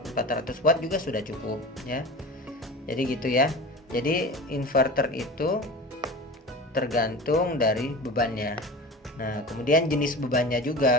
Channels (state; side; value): normal; both; correlation 0.34